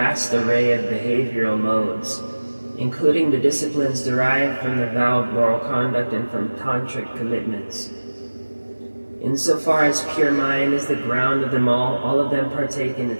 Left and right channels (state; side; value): inverted; both; correlation -1.00